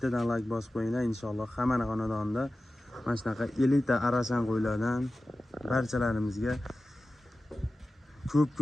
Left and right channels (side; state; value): both; normal; correlation 0.95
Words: like bosib qo'yinglar inshaalloh. Hamma xonadonda mana shunaqa elita arashan qo'ylardan barchalarimizga ko'p